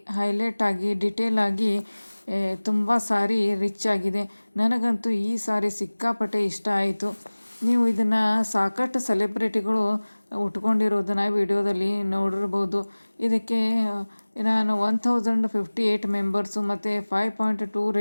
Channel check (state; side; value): inverted; both; correlation -1.00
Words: ಹೈಲೈಟ್ ಆಗಿ, ಡಿಟೇಲ್ ಆಗಿ ತುಂಬ ಸ್ಯಾರಿ ರಿಚ್ ಆಗಿದೆ. ನನಗಂತೂ ಈ ಸ್ಯಾರಿ ಸಿಕ್ಕಾಪಟ್ಟೆ ಇಷ್ಟ ಆಯಿತು. ನೀವು ಇದನ್ನು ಸಾಕಷ್ಟು ಸೆಲೆಬ್ರಿಟಿಗಳು ಉಟ್ಕೊಂಡಿರೋದನ್ನು ವಿಡಿಯೋದಲ್ಲಿ ನೋಡಿರ್ಬೋದು. ಇದಕ್ಕೆ ನಾನು 1058 ಮೆಂಬರ್ಸು ಮತ್ತು 5.2